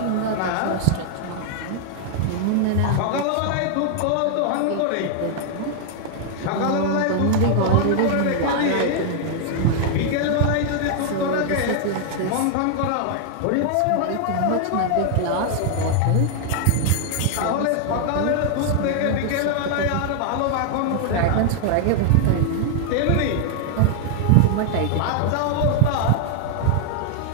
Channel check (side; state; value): both; different; correlation 0.00